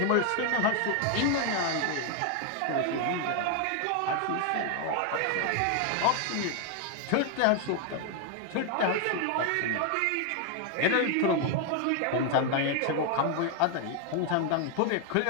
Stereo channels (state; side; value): different; both; correlation 0.00